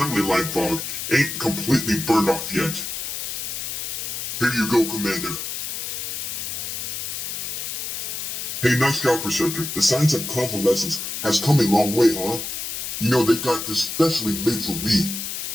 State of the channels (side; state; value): left; noise; hiss, 4 dB below the sound